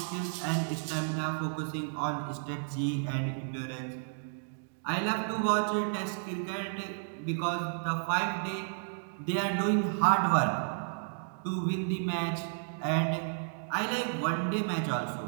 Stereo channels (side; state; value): left; silent; digital silence